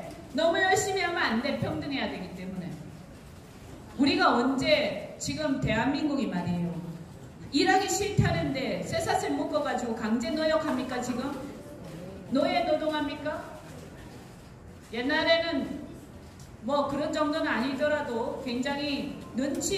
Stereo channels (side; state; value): both; identical; correlation 1.00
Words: 너무 열심히 하면 안 돼. 평등해야 되기 때문에. 우리가 언제 지금 대한민국이 말이에요. 일하기 싫다는데 쇠사슬 묶어가지고 강제 노역합니까 지금? 노예 노동합니까? 옛날에는 뭐 그런 정도는 아니더라도 굉장히